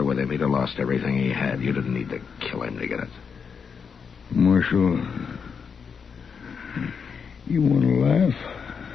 with him. He'd have lost everything he had. You didn't need to kill him to get it. Marshal, you want to laugh?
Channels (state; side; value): quieter; right; 6.2 dB